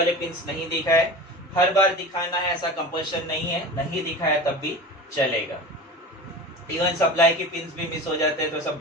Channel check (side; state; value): both; normal; correlation 0.33